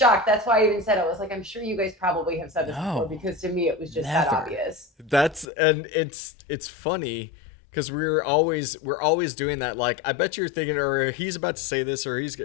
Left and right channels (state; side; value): drops out; right; at 5.5 s